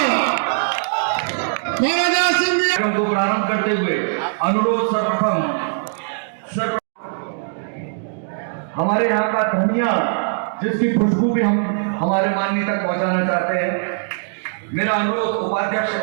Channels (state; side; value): silent; left; digital silence